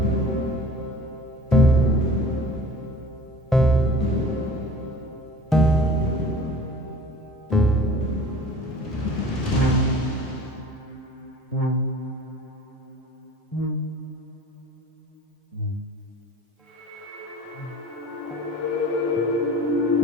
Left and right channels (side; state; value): both; normal; correlation 0.44